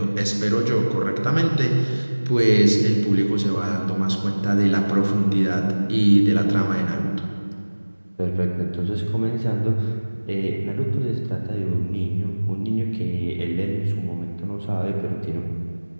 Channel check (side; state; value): both; inverted; correlation -1.00